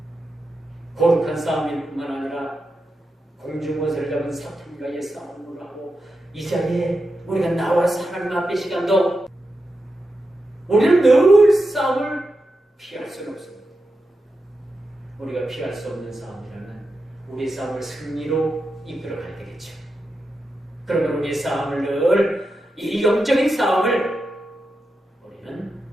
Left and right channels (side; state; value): both; normal; correlation 0.89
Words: 거룩한 싸움일 뿐만 아니라 공중권세를 잡은 사탄과의 싸움을 하고 이 자리에 우리가 나와서 하나님 앞에 시간도 우리는 늘 싸움을 피할 수는 없습니다. 우리가 피할 수 없는 싸움이라면 우리의 싸움을 승리로 이끌어가야 되겠죠. 그러면 우리의 싸움을 늘 이 영적인 싸움을 우리는